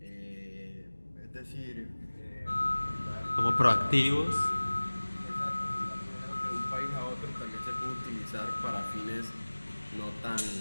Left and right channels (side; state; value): both; inverted; correlation -1.00